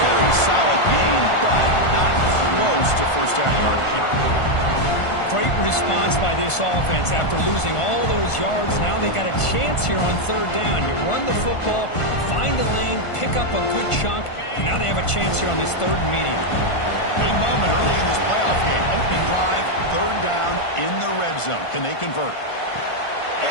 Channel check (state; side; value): late; right; 1.5 ms